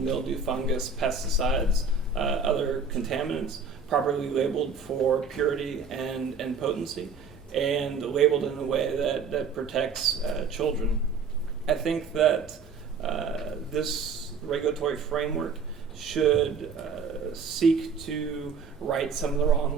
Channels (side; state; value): left; quieter; 5.0 dB